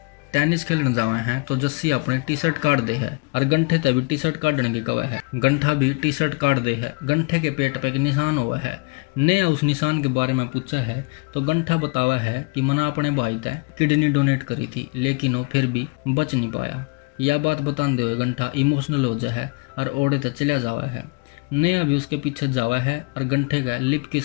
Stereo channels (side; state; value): right; quieter; 30.8 dB